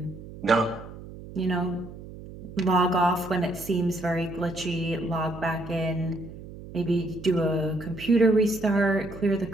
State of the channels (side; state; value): right; noise; hum, 14 dB below the sound